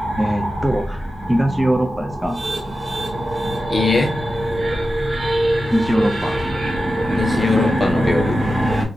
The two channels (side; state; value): both; normal; correlation 0.92